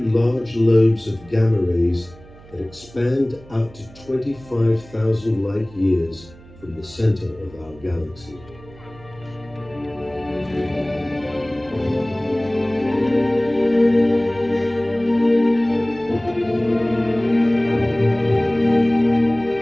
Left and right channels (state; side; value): noise; right; hum, 22 dB below the sound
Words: large lobes of gamma rays that expand out to 25,000 light years from the center of our galaxy.